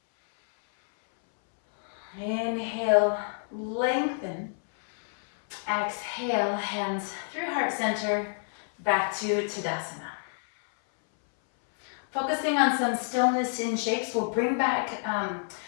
Inhale. Lengthen. Exhale. Hands through heart center. Back to Tadasana. Focusing on some stillness in shapes. We'll bring back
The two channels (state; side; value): silent; right; 59 dB below the other